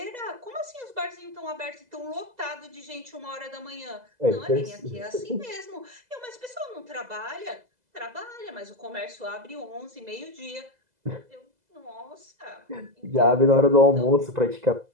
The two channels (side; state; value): left; late; 2.0 ms